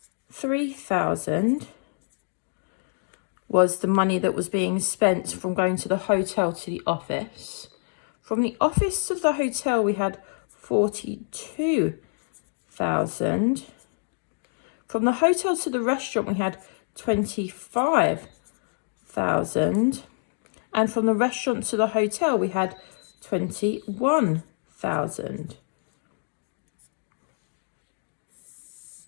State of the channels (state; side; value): silent; right; digital silence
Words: was the money that was being spent from going to the hotel to the office. From the office to the hotel, we had 42,000. From the hotel to the restaurant, we had 25,000. And from the restaurant to the hotel, we had 21,000.